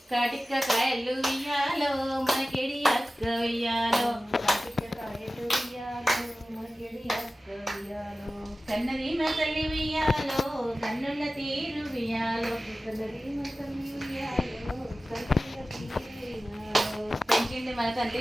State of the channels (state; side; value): normal; both; correlation 0.96